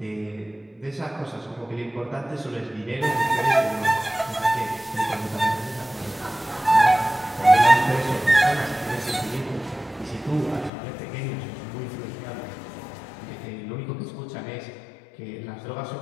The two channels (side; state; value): right; drops out; at 10.7 s